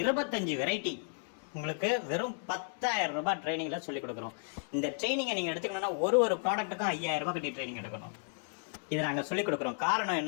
25 வெரைட்டி உங்களுக்கு வெறும் 10,000 ரூபாய் ட்ரைனிங்கில் சொல்லிக் கொடுக்குறோம். இந்த ட்ரைனிங்கை நீங்கள் எடுத்துக்கணுன்னா ஒரு ப்ராடக்ட்டுக்கும் 5,000 ரூபாய் கட்டி ட்ரைனிங் எடுக்கணும். இதை நாங்கள் சொல்லிக் கொடுக்குறோம். காரணம்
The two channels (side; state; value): right; silent; 55 dB below the other